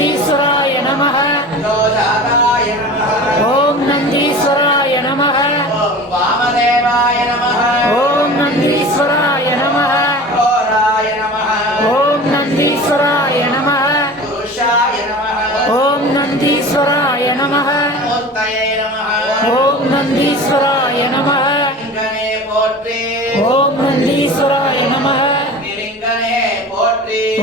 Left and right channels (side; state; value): both; normal; correlation 0.36